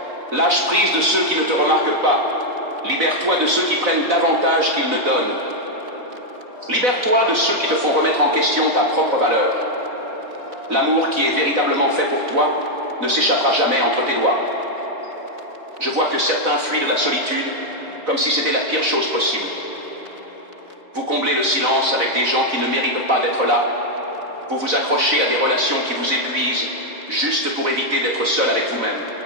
Lâche prise de ceux qui ne te remarquent pas. Libère-toi de ceux qui prennent davantage qu'ils ne donnent. Libère-toi de ceux qui te font remettre en question ta propre valeur. L'amour qui est véritablement fait pour toi ne s'échappera jamais entre tes doigts. Je vois que certains fuient de la solitude comme si c'était la pire chose possible. Vous comblez le silence avec des gens qui ne méritent pas d'être là. Vous vous accrochez à des relations qui vous épuisent, juste pour éviter d'être seul avec vous-même.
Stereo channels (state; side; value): late; left; 4.0 ms